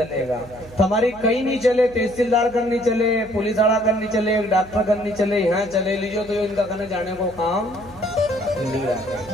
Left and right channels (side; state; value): right; noise; hum, 20 dB below the sound